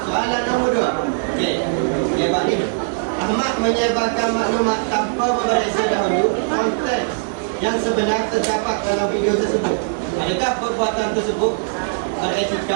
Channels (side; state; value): left; silent; 66 dB below the other